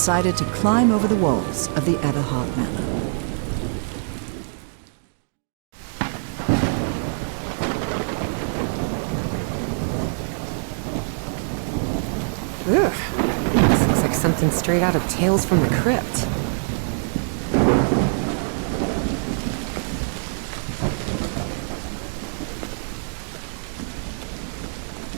to climb over the walls of the Everhart Manor. Ugh. This looks like something straight out of Tales from the Crypt.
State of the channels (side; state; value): left; silent; digital silence